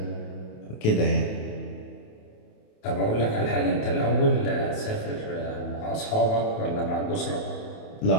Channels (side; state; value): right; late; 28 ms